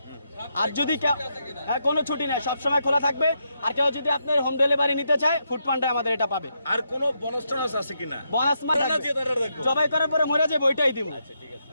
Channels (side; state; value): both; inverted; correlation -0.81